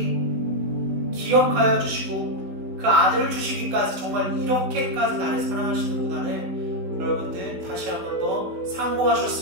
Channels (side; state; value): left; late; 16 ms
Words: 기억하여 주시고 그 아들을 주시기까지 정말 이렇게까지 나를 사랑하시는구나를 여러분들 다시 한 번 더